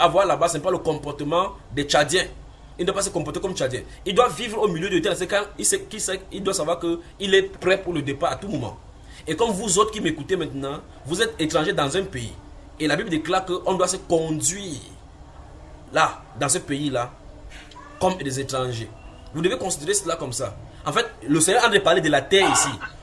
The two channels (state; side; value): identical; both; correlation 1.00